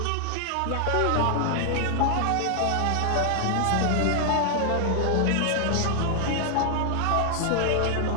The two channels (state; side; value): different; both; correlation 0.00